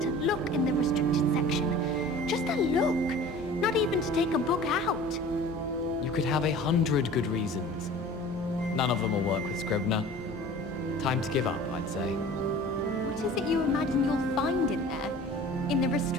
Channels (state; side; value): normal; both; correlation 0.43